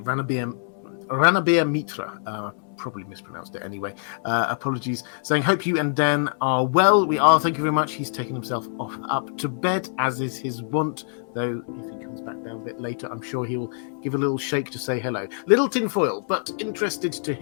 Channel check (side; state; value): right; silent; digital silence